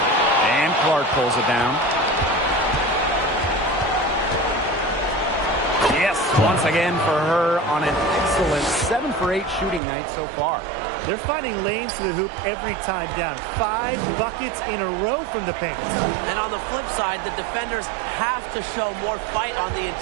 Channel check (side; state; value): left; drops out; at 9.8 s